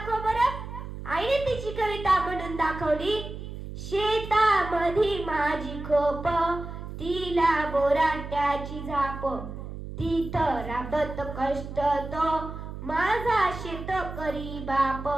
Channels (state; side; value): noise; right; hum, 9 dB below the sound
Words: बरं. आईने तिची कविता म्हणून दाखवली. शेतामधी माझी खोप, तिला बोराट्याची झाप, तिथं राबत कष्ट तो माझा शेतकरी बाप.